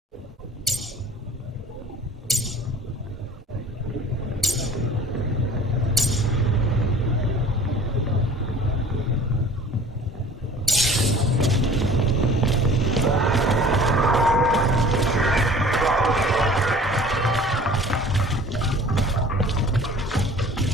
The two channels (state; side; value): normal; both; correlation 0.48